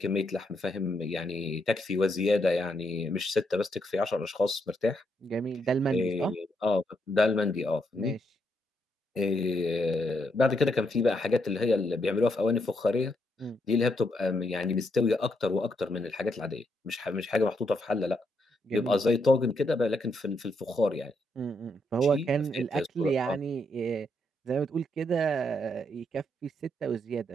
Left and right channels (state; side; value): normal; both; correlation 0.78